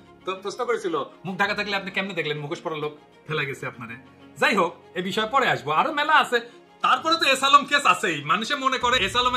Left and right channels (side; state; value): both; identical; correlation 1.00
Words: তো প্রশ্ন করেছিল মুখ ঢাকা থাকলে আপনি কেমনে দেখলেন মুখোশ পরা লোক ফেলাই গেছে আপনারে? যাই হোক, এই বিষয়ে পরে আসবো, আরো মেলা আছে। তারপরে তো এস আলম কেস আছেই। মানুষে মনে করে এস